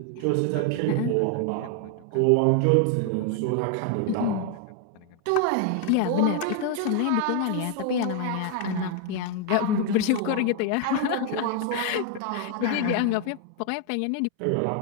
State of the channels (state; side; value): different; both; correlation 0.01